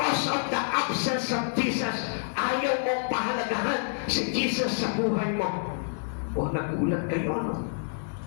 of the absence of Jesus. Ayaw mong pahalagahan si Jesus sa buhay mo. O nagulat kayo, no?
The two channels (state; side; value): silent; right; digital silence